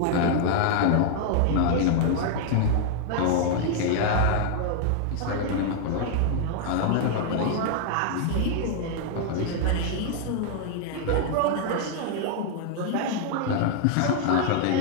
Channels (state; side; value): different; both; correlation 0.00